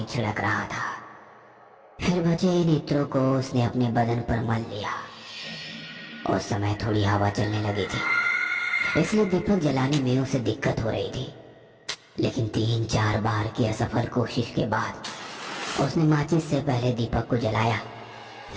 छिड़क रहा था। फिर बचे इन इत्रों को उसने अपने बदन पर मल लिया। उस समय थोड़ी हवा चलने लगी थी, इसलिए दीपक जलाने में उसे दिक्कत हो रही थी। लेकिन 3-4 बार की असफल कोशिश के बाद उसने माचिस से पहले दीपक को जलाया,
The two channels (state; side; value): identical; both; correlation 1.00